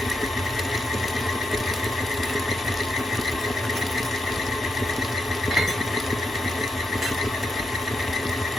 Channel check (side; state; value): both; normal; correlation 0.81